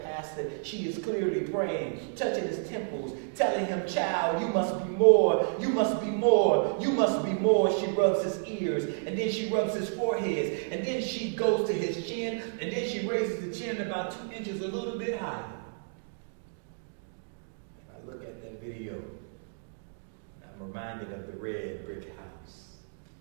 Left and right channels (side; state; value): left; silent; digital silence